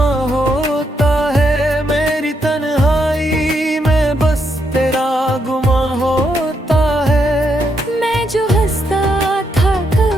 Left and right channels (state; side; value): normal; both; correlation 0.78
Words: होता है, मेरी तन्हाई में बस तेरा गुमा होता है। मैं जो हंसता था